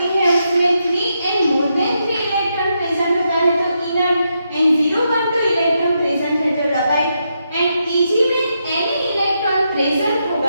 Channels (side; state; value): both; inverted; correlation -0.82